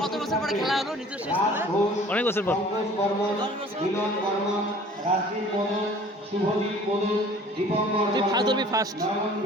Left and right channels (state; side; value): normal; both; correlation 0.49